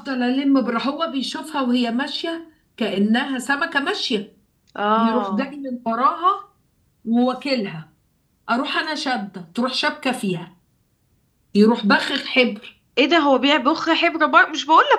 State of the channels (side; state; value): both; identical; correlation 1.00